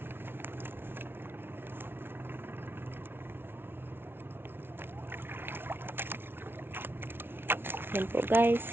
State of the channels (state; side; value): late; left; 0.11 ms